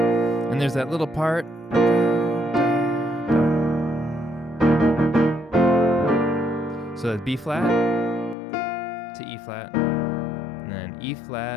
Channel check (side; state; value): right; drops out; at 8.3 s